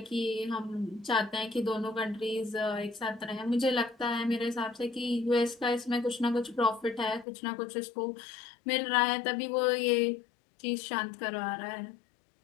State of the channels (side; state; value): right; drops out; at 7.2 s